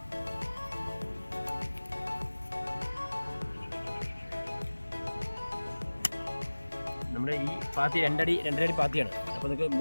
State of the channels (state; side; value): inverted; both; correlation -1.00